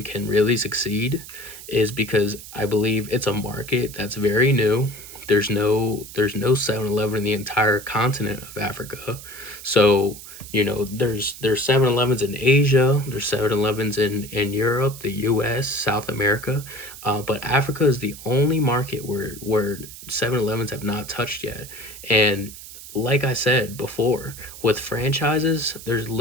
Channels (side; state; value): right; noise; hiss, 15 dB below the sound